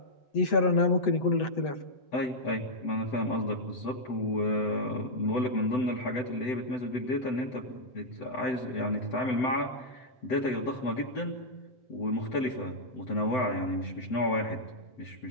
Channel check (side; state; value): right; late; 7.8 ms